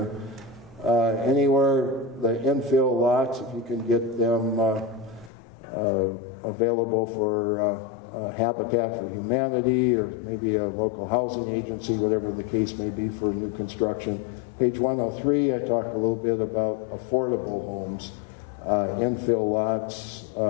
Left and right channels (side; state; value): right; drops out; at 5.3 s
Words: Anywhere the infill lots, if you can get them available for Habitat for Humanity or maybe a local housing agency, whatever the case may be for new construction. Page 103, I talk a little bit about affordable homes, infill lots,